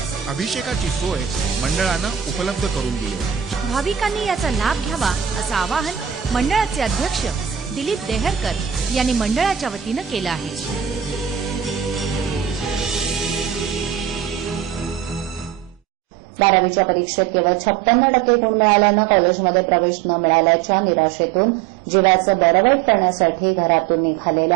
अभिषेकाची सोय मंडळानं उपलब्ध करून दिली. भाविकांनी याचा लाभ घ्यावा असं आवाहन मंडळाचे अध्यक्ष दिलीप देहरकर यांनी मंडळाच्या वतीनं केलं आहे. 12वीच्या परीक्षेत केवळ 56% गुण मिळाल्यानं कॉलेजमध्ये प्रवेश न मिळाल्याच्या निराशेतून जीवाचं बरं वाईट करण्यासाठी घरातून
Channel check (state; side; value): quieter; left; 9.3 dB